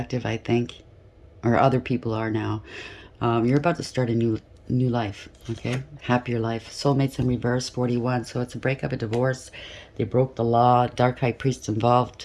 I think, or other people are now. You're about to start a new life, okay? Happier life. Soulmates in reverse, 41. So it's a breakup, a divorce. They broke the law. Dark high priests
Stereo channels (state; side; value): identical; both; correlation 1.00